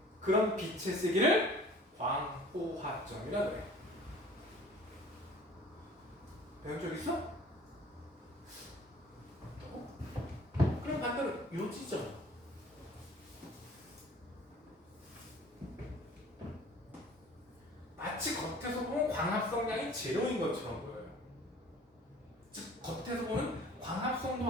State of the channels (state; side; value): normal; both; correlation 0.49